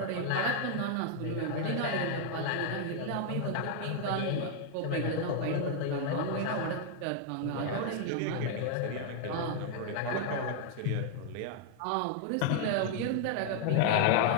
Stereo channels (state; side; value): different; both; correlation 0.00